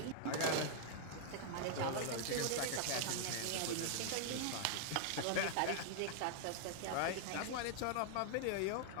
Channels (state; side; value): different; both; correlation -0.01